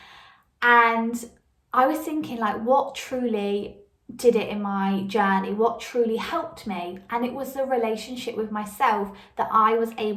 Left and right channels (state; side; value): identical; both; correlation 1.00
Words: And I was thinking, like, what truly did it in my journey? What truly helped me? And it was the relationship with myself that I was